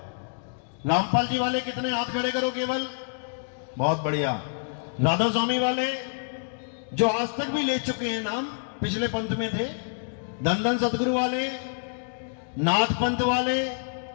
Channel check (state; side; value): silent; right; digital silence